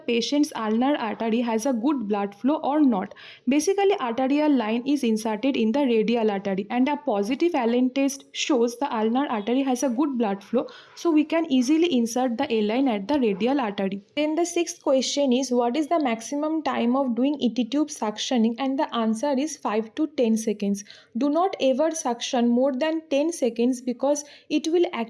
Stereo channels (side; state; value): both; identical; correlation 1.00